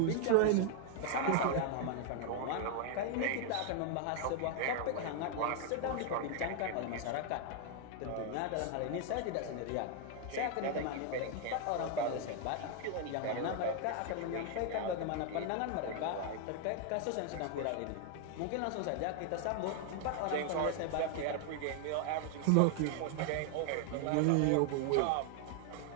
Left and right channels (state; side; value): different; both; correlation 0.00